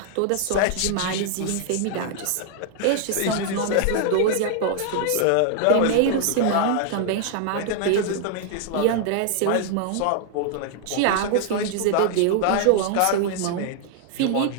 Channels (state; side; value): different; both; correlation 0.00